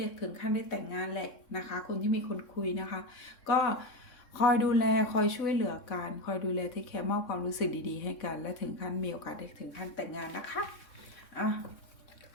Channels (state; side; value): late; right; 3.6 ms